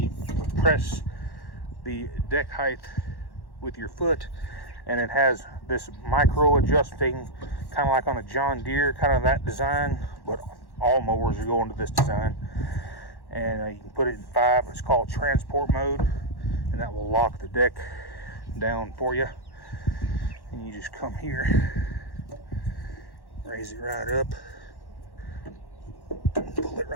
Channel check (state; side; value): late; right; 1.1 ms